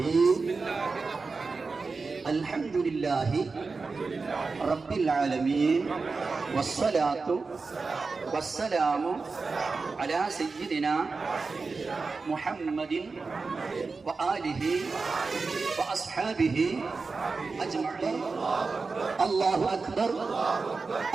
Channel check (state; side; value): quieter; left; 4.2 dB